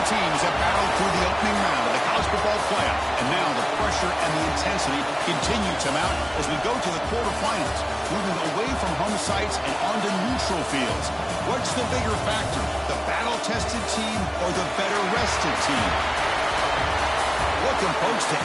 teams have battled through the opening round of the college football playoff, and now the pressure and the intensity continue to mount as we go to the quarterfinals, moving away from home sites and onto neutral fields. What's the bigger factor, the battle-tested team or the better-rested team? Welcome, folks, to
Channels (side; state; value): both; identical; correlation 1.00